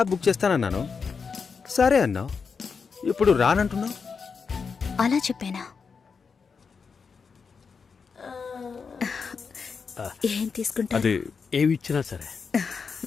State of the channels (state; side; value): quieter; right; 5.5 dB